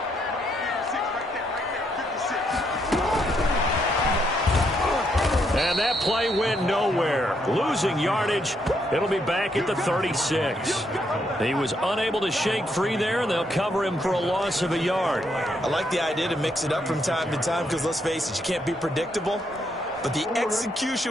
And that play went nowhere. Losing yardage. It'll be back at the 36. He was unable to shake free there, and they'll cover him for a loss of a yard. I like the idea to mix it up from time to time because, let's face it, you can't be predictable. But the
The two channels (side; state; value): both; normal; correlation 0.76